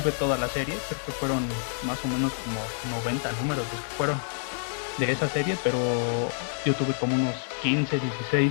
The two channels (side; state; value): right; silent; digital silence